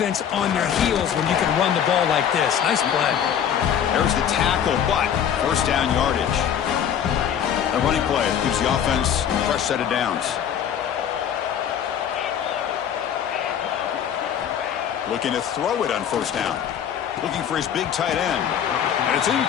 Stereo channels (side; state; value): right; quieter; 8.9 dB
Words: on their heels when you can run the ball like this. Nice play. There's the tackle, but first down yardage. A running play gives the offense a fresh set of downs. Looking to throw it on first down. Looking for his big tight end. And it's